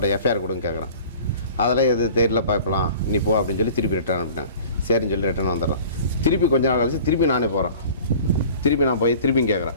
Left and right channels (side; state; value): both; inverted; correlation -0.45